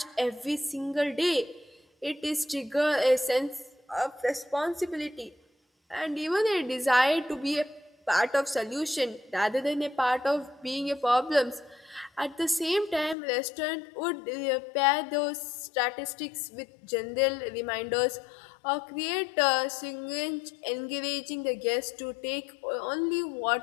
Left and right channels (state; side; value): drops out; right; at 13.2 s